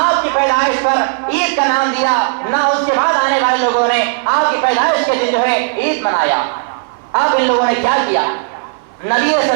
کی پیدائش پر عید کا نام دیا، نہ اس کے بعد آنے والے لوگوں نے آپ کی پیدائش کے دن جو ہے عید منایا۔ اب ان لوگوں نے کیا کیا؟ نبی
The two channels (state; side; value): silent; left; digital silence